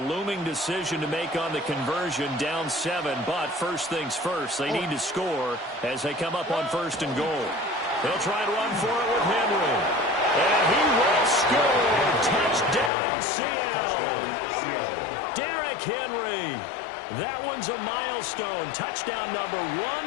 looming decision to make on the conversion, down 7, but first things first, they need to score as they come up on 1st and goal. They'll try and run for it with Henry. And he will score. Touchdown, Seattle. Derrick Henry. That one's a milestone. Touchdown number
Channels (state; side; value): drops out; right; at 12.9 s